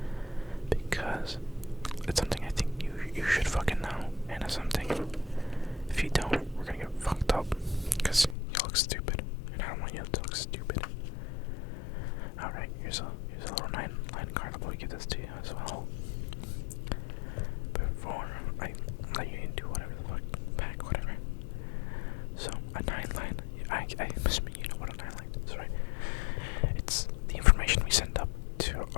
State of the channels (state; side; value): drops out; right; at 8.3 s